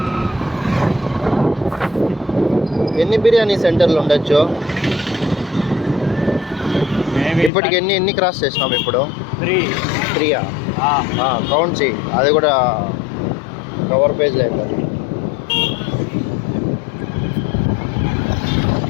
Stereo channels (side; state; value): right; drops out; at 7.5 s